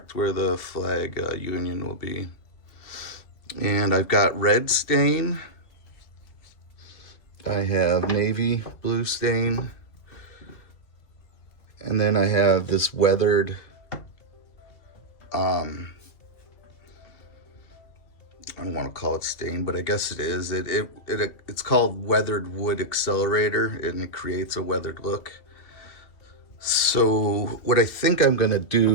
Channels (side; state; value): right; late; 2.7 ms